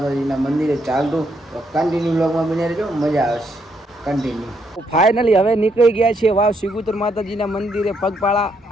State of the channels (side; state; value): both; normal; correlation 0.75